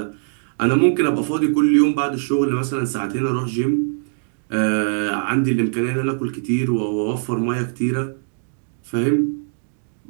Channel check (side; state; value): left; silent; digital silence